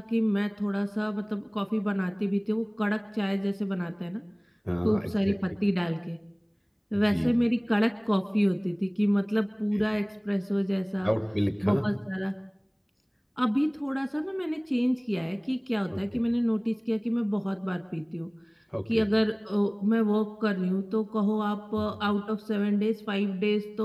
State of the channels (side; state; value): both; identical; correlation 1.00